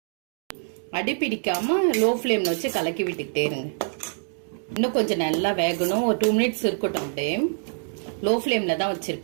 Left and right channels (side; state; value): left; silent; 62 dB below the other